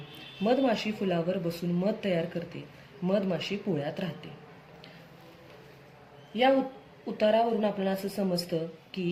मधमाशी फुलावर बसून मध तयार करते. मधमाशी पोळ्यात राहते. या उतारावरून आपल्याला असं समजतं की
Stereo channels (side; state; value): both; identical; correlation 1.00